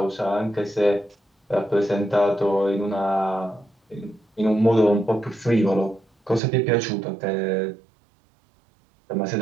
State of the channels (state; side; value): drops out; left; at 6.4 s